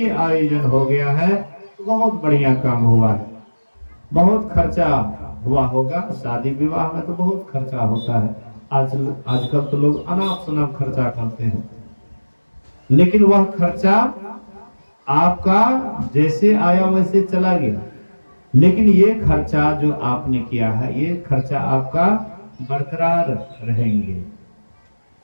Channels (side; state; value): both; inverted; correlation -1.00